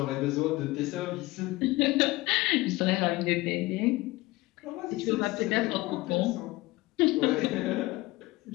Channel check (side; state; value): right; quieter; 20.2 dB